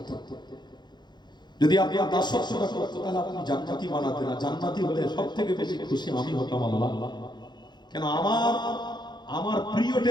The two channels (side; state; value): right; late; 0.21 ms